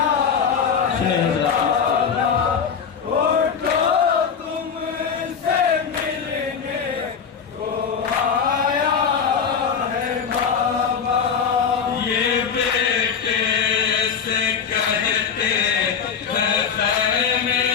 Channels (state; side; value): quieter; right; 6.7 dB